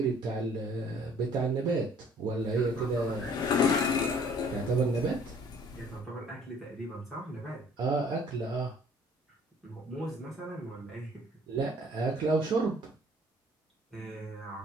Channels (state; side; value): normal; both; correlation 0.56